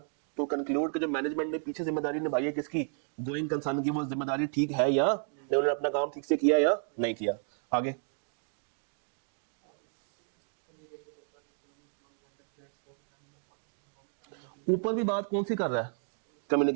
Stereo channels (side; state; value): left; silent; 56 dB below the other